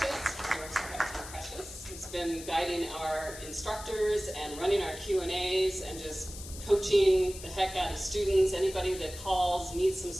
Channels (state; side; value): noise; left; hiss, 13 dB below the sound